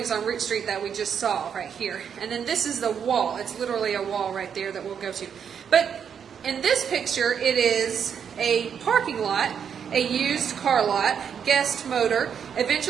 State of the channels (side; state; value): left; quieter; 7.6 dB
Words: on Root Street that we just saw right here. And then this is the wall. It's literally a wall right there that we'll go to. But in this picture, it is a parking lot, a used car lot, Guest Motor.